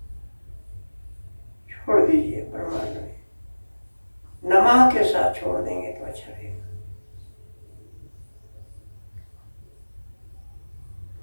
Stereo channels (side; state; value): both; inverted; correlation -1.00